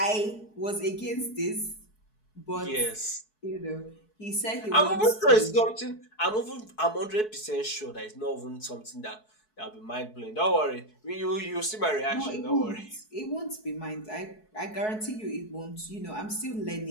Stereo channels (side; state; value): right; late; 4.7 ms